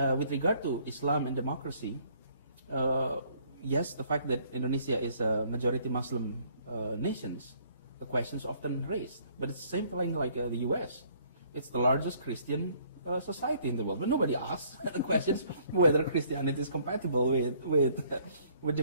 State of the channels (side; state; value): both; inverted; correlation -0.62